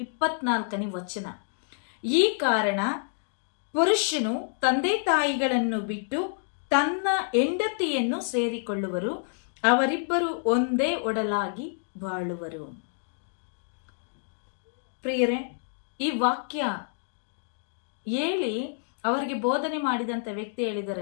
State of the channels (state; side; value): silent; right; digital silence